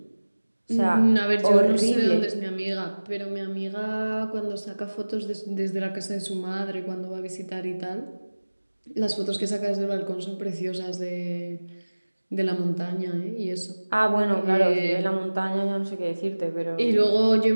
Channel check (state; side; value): inverted; both; correlation -1.00